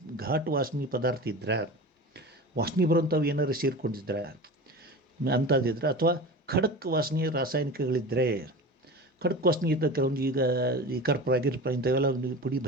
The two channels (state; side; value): normal; both; correlation 0.32